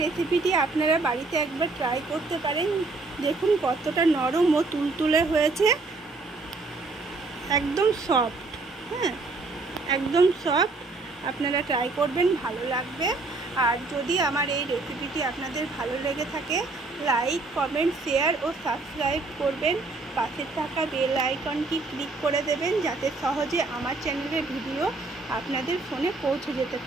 রেসিপিটি আপনারা বাড়িতে একবার ট্রাই করতে পারেন। দেখুন কতটা নরম ও তুলতুলে হয়েছে, একদম সফট। হ্যাঁ, একদম সফট। আপনারা ট্রাই করবেন, ভালো লাগবে। আর যদি আমার এই রেসিপিটি আপনাদের ভালো লেগে থাকে, লাইক, কমেন্ট, শেয়ার ও সাবস্ক্রাইব করবেন। পাশে থাকা বেল আইকনটি ক্লিক করে দেবেন, যাতে সহজে আমার চ্যানেলের ভিডিও আপনাদের ফোনে পৌঁছে যেতে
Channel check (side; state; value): left; quieter; 3.6 dB